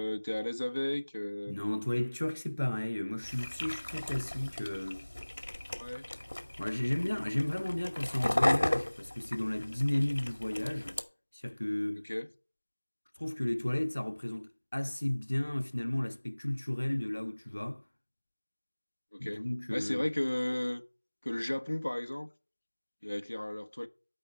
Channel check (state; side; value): inverted; both; correlation -1.00